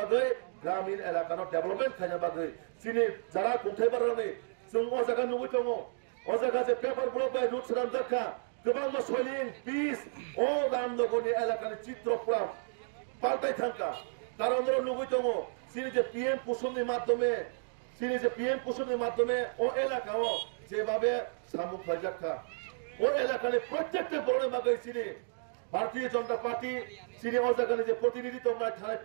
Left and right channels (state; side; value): silent; left; digital silence